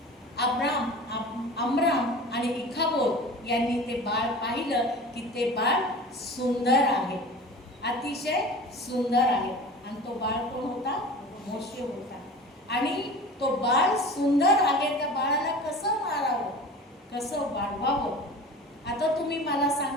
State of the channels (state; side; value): normal; both; correlation 0.37